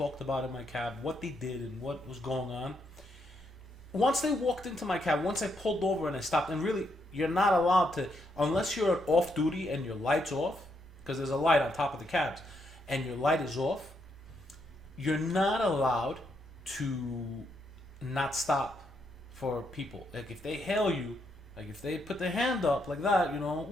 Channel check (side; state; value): both; normal; correlation 0.77